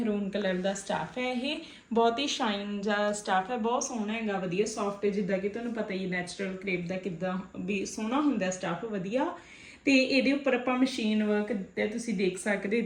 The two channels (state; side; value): identical; both; correlation 1.00